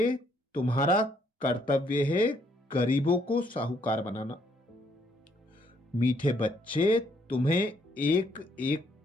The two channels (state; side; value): normal; both; correlation 0.70